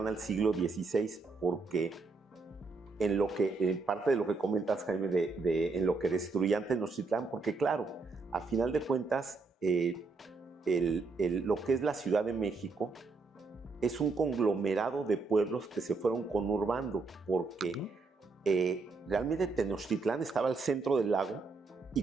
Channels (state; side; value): quieter; left; 4.1 dB